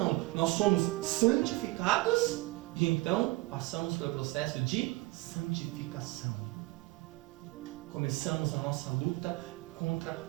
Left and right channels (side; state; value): left; quieter; 21.2 dB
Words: Nós somos santificados e então passamos pelo processo de santificação. Começamos a nossa luta contra